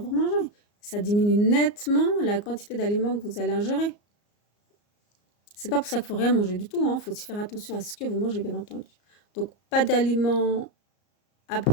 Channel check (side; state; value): right; late; 34 ms